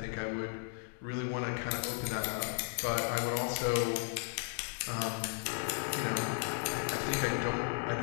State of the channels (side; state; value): right; silent; 54 dB below the other